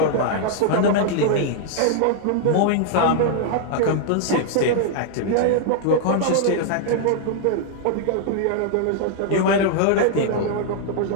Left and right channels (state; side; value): different; both; correlation 0.00